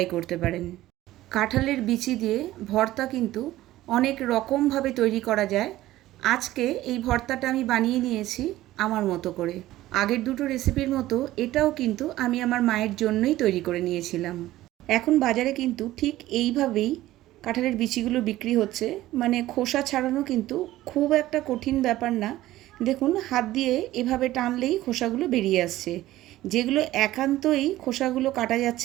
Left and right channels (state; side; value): quieter; left; 15.6 dB